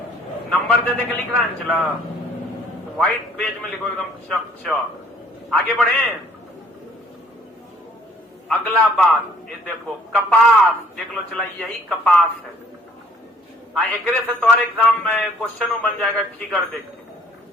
नंबर दे के लिख रहा है। चला व्हाइट पेज में लिखो एकदम चक। आगे बढ़े। अगला बात ये देखो, कपास देख लो। चला यही कपास है। एकरे से तुम्हारे एग्जाम में क्वेश्चन बन जाएगा फिगर देख के।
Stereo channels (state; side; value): normal; both; correlation 0.59